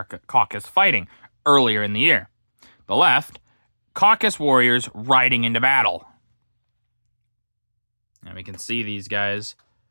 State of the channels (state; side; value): inverted; both; correlation -1.00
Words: fighting earlier in the year. The left, Caucasus warriors riding into battle. And we can see these guys,